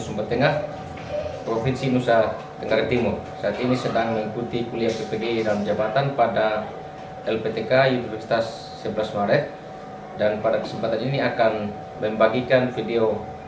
Tengah, Provinsi Nusa Tenggara Timur. Saat ini sedang mengikuti kuliah PPG dalam jabatan pada LPTK Universitas 11 Maret, dan pada kesempatan ini akan membagikan video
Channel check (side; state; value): both; identical; correlation 1.00